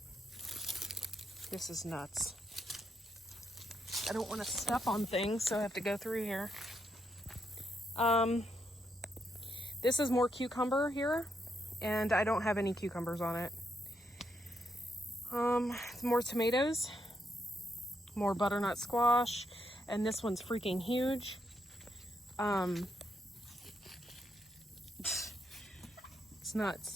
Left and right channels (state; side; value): normal; both; correlation 0.79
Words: This is nuts. I don't want to step on things, so I have to go through here. This is more cucumber here, and I don't have any cucumbers on it. More tomatoes, more butternut squash, and this one's freaking huge. It's